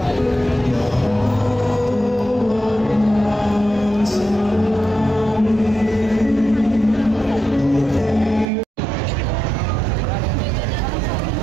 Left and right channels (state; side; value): drops out; left; at 8.5 s